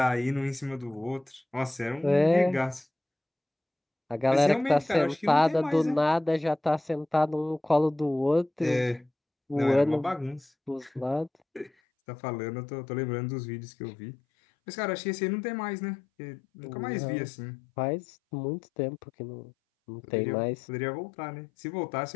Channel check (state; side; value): drops out; right; at 11.7 s